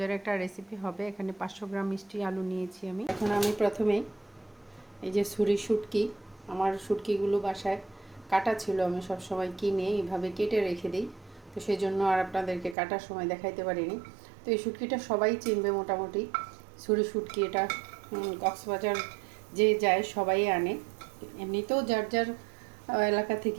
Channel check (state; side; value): drops out; left; at 12.8 s